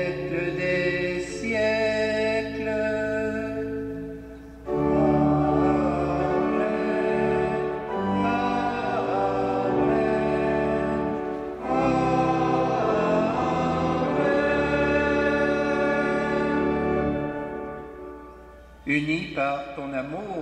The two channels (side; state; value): both; identical; correlation 1.00